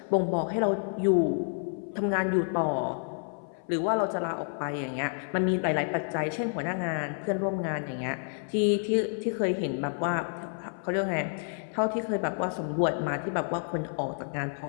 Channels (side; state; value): right; silent; 58 dB below the other